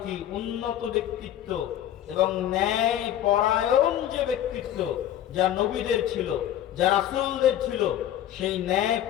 উন্নত ব্যক্তিত্ব এবং ন্যায় পরায়ণ যে ব্যক্তিত্ব যা নবীদের ছিল, যা রাসূলদের ছিল, সেই ন্যায়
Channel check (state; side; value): quieter; right; 11.5 dB